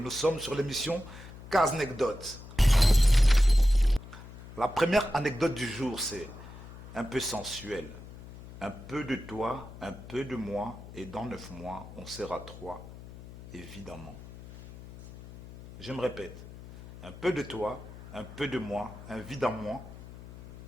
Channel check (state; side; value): noise; left; hum, 15 dB below the sound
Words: sommes sur l'émission Kaznekdote. La première anecdote du jour, c'est un peu sensuel. Un peu de toi, un peu de moi, et dans 9 mois, on sera 3, évidemment. Je me répète, un peu de toi, un peu de moi, évidemment,